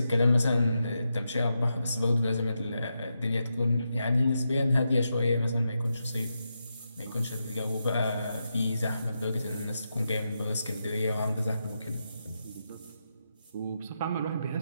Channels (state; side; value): inverted; both; correlation -0.86